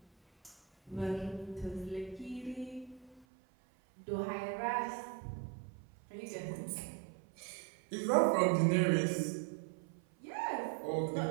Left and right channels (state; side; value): drops out; left; at 3.2 s